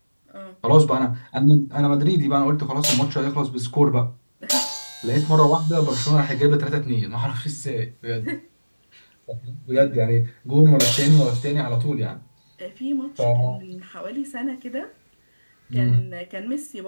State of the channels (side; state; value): both; inverted; correlation -1.00